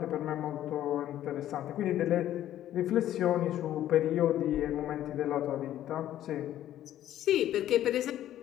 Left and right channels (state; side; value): quieter; right; 12.4 dB